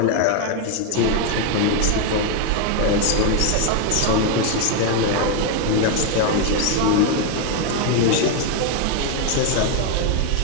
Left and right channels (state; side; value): different; both; correlation 0.01